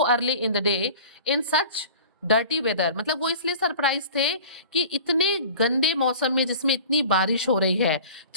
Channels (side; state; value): both; inverted; correlation -0.41